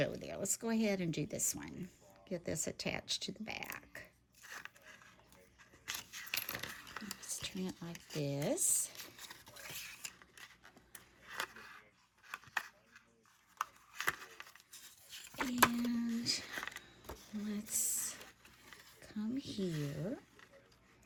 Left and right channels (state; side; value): identical; both; correlation 1.00